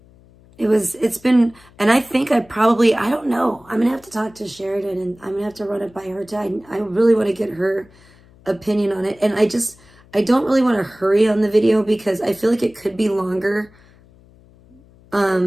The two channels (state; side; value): noise; left; hum, 27 dB below the sound